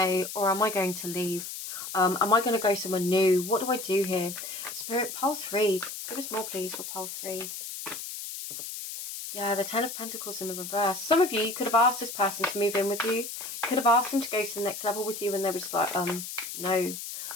or am I going to leave? Am I going to go somewhere new? What do I do here? Spirit, pole 3. Give us more, please, for pole 3. Yeah, the Ten of Pentacles in the reverse. Some of you could have asked this person to move in with you. You could have asked them to go to the next level with you, and they were just like, no.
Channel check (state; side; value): noise; left; hiss, 8 dB below the sound